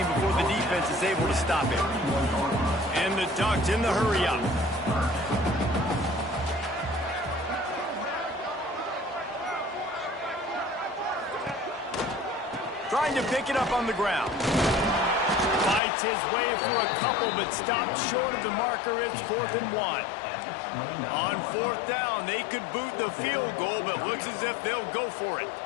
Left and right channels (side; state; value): right; drops out; at 15.8 s